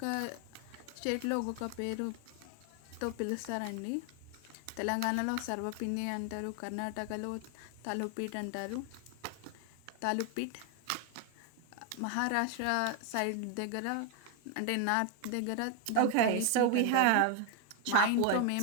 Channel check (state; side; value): different; both; correlation 0.00